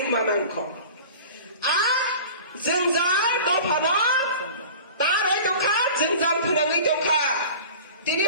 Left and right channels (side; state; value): both; inverted; correlation -0.39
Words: manangkho a जोंजाल दफानो तार hoi tongkha जोंजाल phonangai tongkha tini